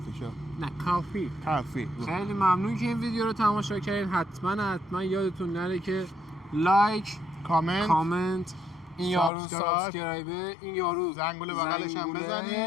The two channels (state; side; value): drops out; right; at 9.3 s